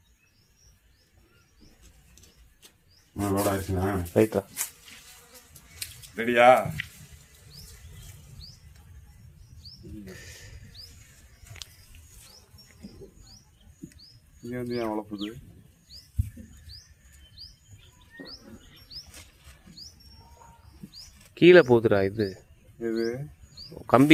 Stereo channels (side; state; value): both; identical; correlation 1.00